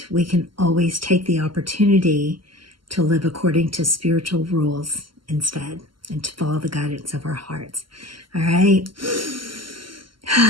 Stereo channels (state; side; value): late; left; 0.73 ms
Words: we can always take the opportunity to live according to spiritual rules instead, and to follow the guidance of our hearts. All right.